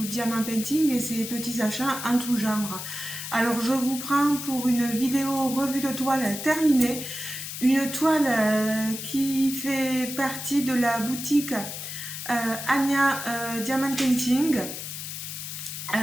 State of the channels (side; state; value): left; noise; hiss, 7 dB below the sound